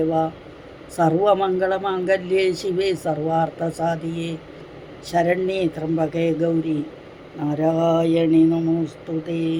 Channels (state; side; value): identical; both; correlation 1.00